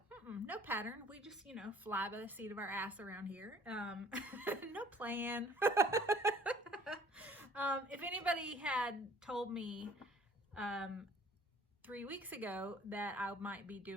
pattern. We just, fly by the seat of our ass around here. No plan. If anybody had told me 3 weeks ago that I might be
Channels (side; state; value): both; normal; correlation 0.53